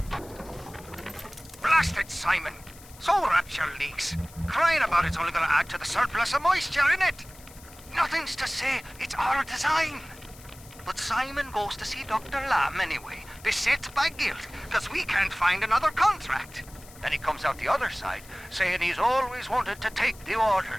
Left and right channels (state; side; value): noise; left; hiss, 21 dB below the sound